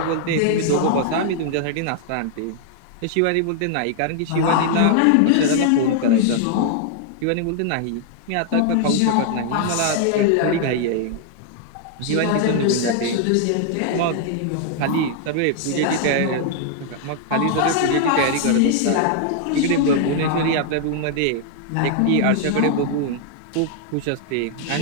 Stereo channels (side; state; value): both; different; correlation 0.00